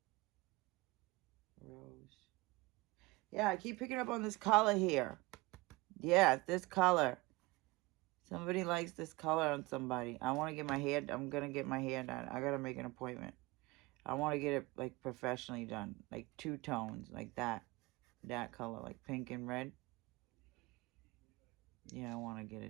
Rose. Yeah, I keep picking up on this color here. Yeah, this color. Somebody likes this color on somebody. I'm gonna get my hair done. I gotta make an appointment. I want to get it like professionally done, like 2 tones, like that color, like pink and red. Yeah, I want to get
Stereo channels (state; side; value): quieter; left; 21.9 dB